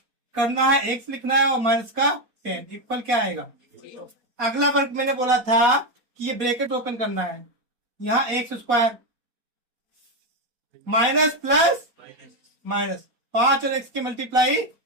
करना है, एक्स लिखना है और माइनस का 10 इक्वल क्या आएगा। अगला वर्ग मैंने बोला था कि ये ब्रैकेट ओपन करना है, यहाँ x square minus plus minus, 5 और एक्स की मल्टीप्लाई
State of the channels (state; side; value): late; left; 4.2 ms